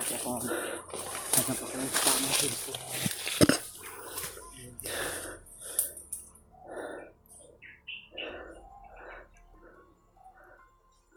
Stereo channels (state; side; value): identical; both; correlation 1.00